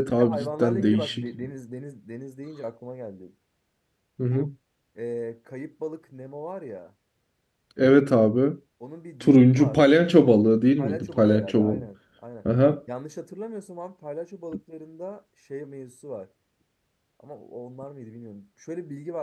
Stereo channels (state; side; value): identical; both; correlation 1.00